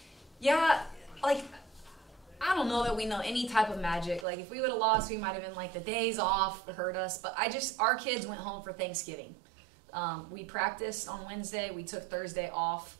Yeah, like, I don't know that we know any type of magic. Like, if we would have lost, we might have been like, the days off hurt us. But our kids went home for Thanksgiving. We practiced on Wednesday. We took Thursday off,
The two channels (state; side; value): drops out; left; at 4.2 s